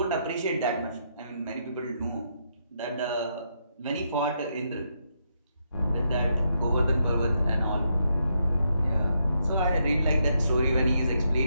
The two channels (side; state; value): both; inverted; correlation -0.79